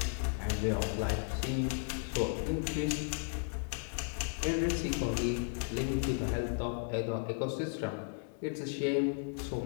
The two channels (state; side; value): silent; right; 55 dB below the other